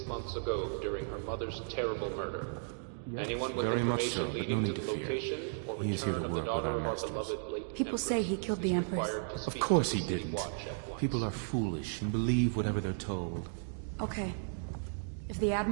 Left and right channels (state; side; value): silent; left; digital silence